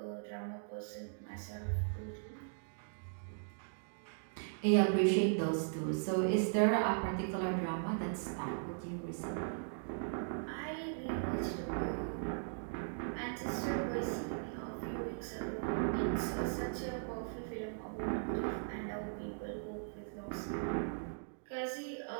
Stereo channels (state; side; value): silent; left; digital silence